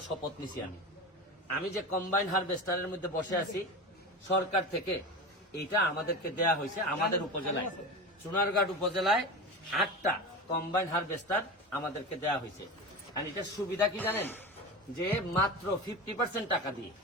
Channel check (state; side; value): normal; both; correlation 0.26